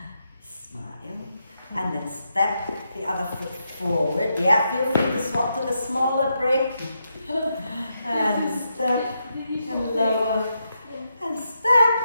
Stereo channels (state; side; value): inverted; both; correlation -0.83